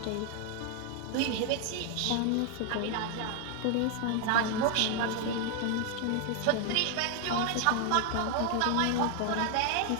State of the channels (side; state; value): both; different; correlation 0.00